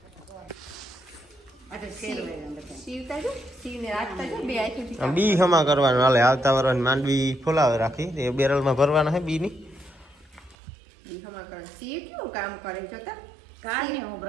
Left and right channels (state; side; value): drops out; left; at 10.6 s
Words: બી હમા કરવાનું હાલે. આવતા વર્ષ માંડવી ફોલાવે રાખી એ બેરલમાં ભરવાના હે બી ની બી હમા કરે. સી કેવું કામ કરે જોતા કાને હું